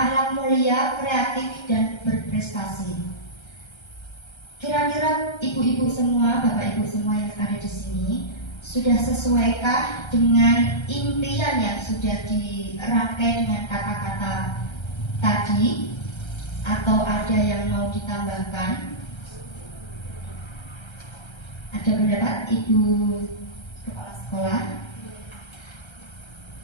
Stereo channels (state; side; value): late; right; 1.3 ms